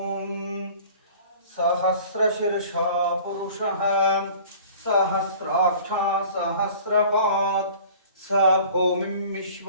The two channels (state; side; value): inverted; both; correlation -0.46